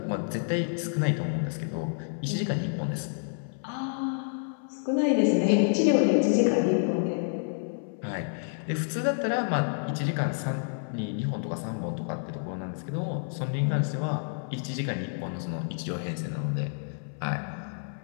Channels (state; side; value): silent; right; 59 dB below the other